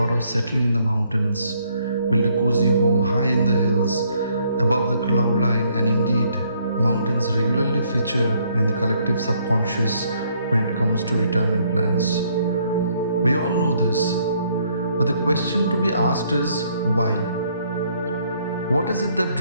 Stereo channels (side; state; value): both; inverted; correlation -0.68